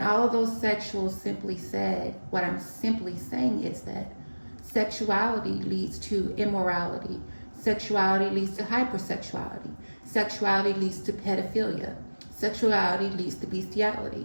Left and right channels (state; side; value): inverted; both; correlation -1.00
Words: all of those sexuals simply said, what I'm simply saying is that sexuality leads to immorality. Sexuality leads to hypersexuality. Sexuality leads to pedophilia. Sexuality leads to